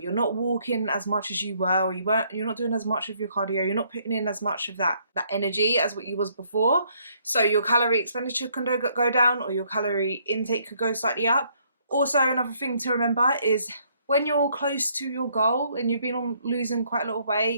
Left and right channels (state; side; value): inverted; both; correlation -0.68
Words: not walking as much as you were, or you're not doing as much of your cardio, you're not putting in as much of that energy as what you was before. So your calorie expenditure can go down, or your calorie intake could go slightly up. Also, another thing to remember is when you're close to your goal and you've been on losing quite a lot of